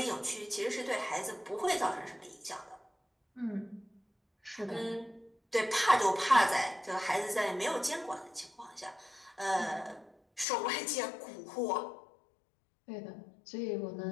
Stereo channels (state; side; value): drops out; right; at 10.5 s